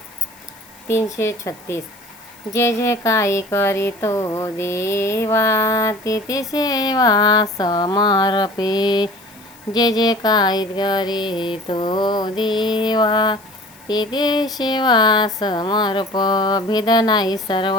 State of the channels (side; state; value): left; noise; hiss, 25 dB below the sound